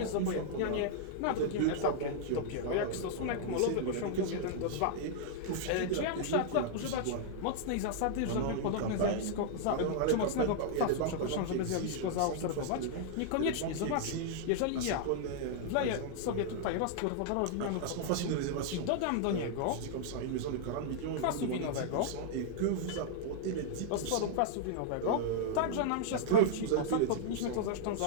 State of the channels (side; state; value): both; different; correlation -0.01